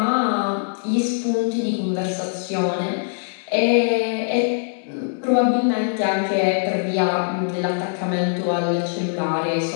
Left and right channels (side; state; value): right; silent; digital silence